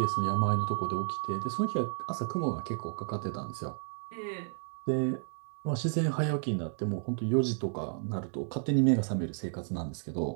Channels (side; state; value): left; silent; digital silence